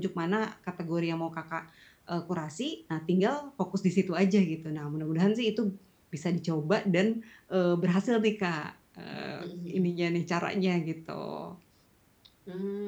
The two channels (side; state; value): both; identical; correlation 1.00